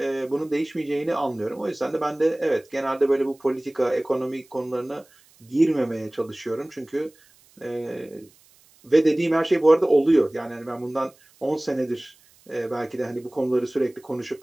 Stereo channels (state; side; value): noise; right; hiss, 30 dB below the sound